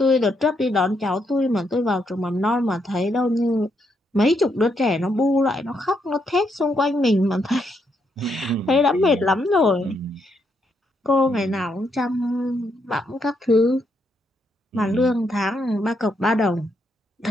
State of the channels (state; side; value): normal; both; correlation 0.77